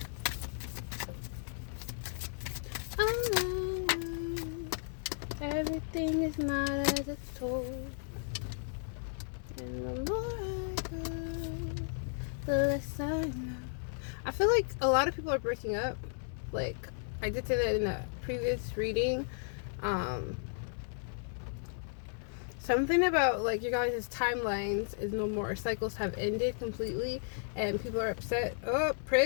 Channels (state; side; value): silent; right; digital silence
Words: Everything is not as it's told. And the more I go, the less I know. I feel like a lot of people are breaking up. Like, I did say that in a previous reading. Something about, like, your guys' timelines is no more. Cycles have ended completely, and people are upset. Oh,